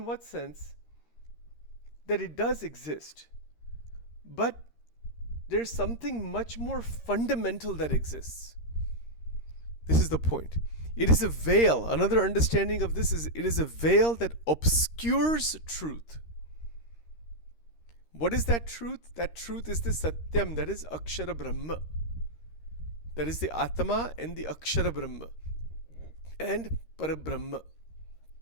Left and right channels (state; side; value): late; right; 13 ms